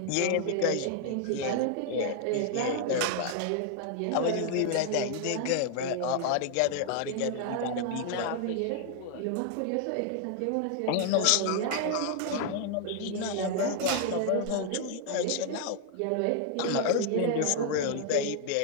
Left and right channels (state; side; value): different; both; correlation 0.00